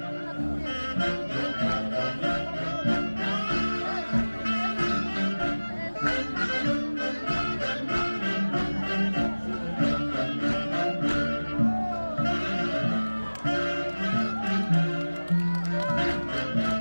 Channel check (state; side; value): inverted; both; correlation -1.00